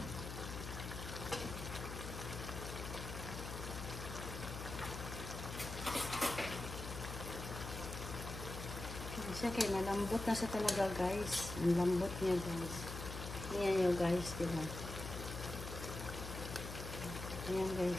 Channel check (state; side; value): noise; left; hum, 7 dB below the sound